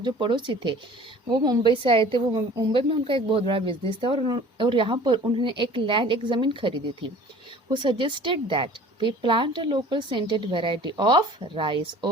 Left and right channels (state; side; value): normal; both; correlation 0.47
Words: जो पड़ोसी थे, वो मुंबई से आए थे. वो मुंबई में उनका एक बहुत बड़ा बिजनेस था और यहाँ पर उन्होंने एक ज़मीन खरीदी थी. Who suggested that we plant a local scented variety of rice.